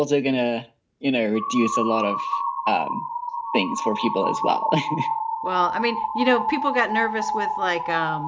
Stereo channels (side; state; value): both; identical; correlation 1.00